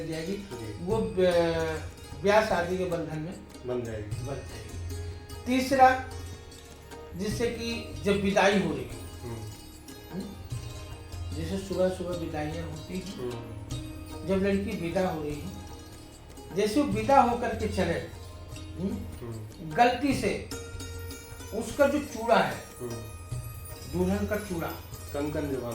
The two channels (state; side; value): identical; both; correlation 1.00